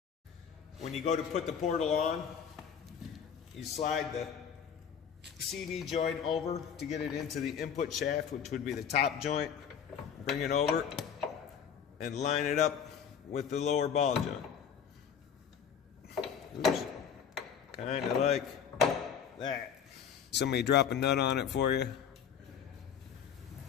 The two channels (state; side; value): quieter; right; 7.7 dB